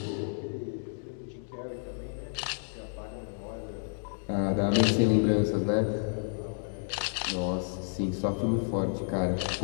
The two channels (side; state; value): right; silent; digital silence